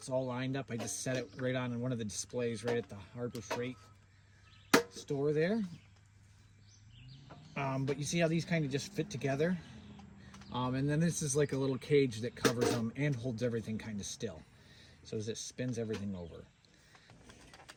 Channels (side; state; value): both; identical; correlation 1.00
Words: all lined up. I just set it right on one of the displays right at the Harbor Freight store there. But you see how these kind of just fit together? And then this is like a little cage that covers them and holds everything kind of still. So as it spins everything over.